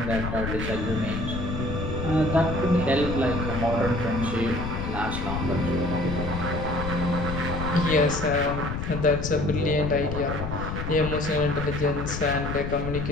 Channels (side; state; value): left; noise; rumble, 4 dB below the sound